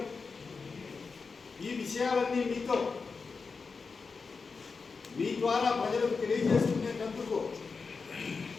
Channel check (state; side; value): quieter; right; 4.8 dB